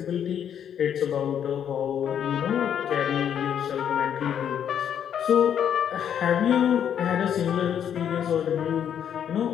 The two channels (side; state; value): right; quieter; 9.0 dB